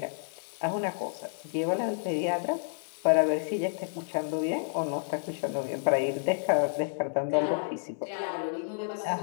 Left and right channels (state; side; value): silent; right; digital silence